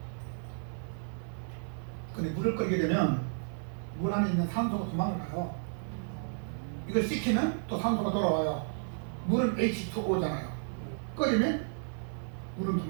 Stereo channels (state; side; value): silent; left; 56 dB below the other